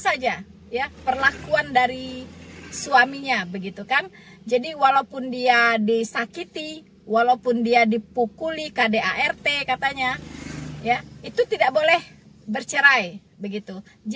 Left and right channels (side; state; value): both; identical; correlation 1.00